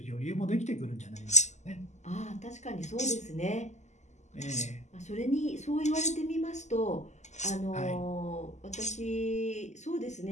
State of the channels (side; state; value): right; late; 0.34 ms